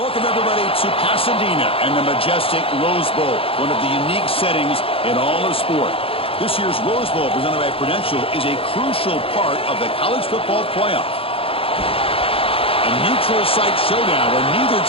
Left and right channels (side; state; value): right; late; 0.27 ms